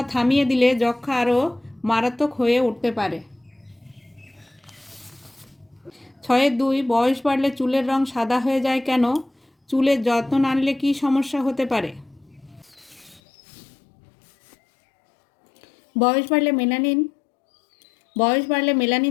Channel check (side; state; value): right; drops out; at 13.2 s